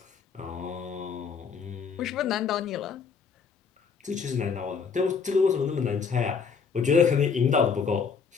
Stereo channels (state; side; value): quieter; right; 5.9 dB